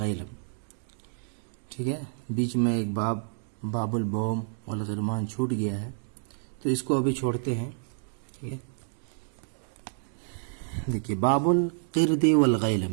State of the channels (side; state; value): left; silent; digital silence